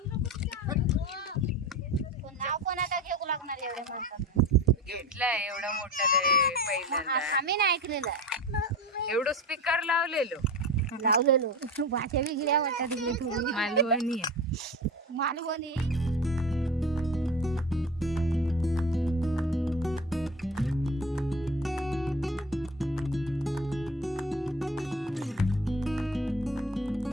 नाव कोणाला घेऊ लागणार एवढ्या माणसाचं? घेतलाय एवढा मोठा पहिल्यांदा. आम्ही नाही ऐकलेलं. एवढं स्पीकर लावलेलो. लावलेलो भाषा वेगळ्या वाटतात तिकडे थोडी. मालवणी आहे. मालवणी.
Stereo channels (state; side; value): normal; both; correlation 0.32